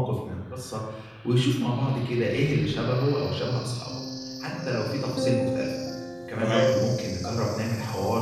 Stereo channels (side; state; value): both; identical; correlation 1.00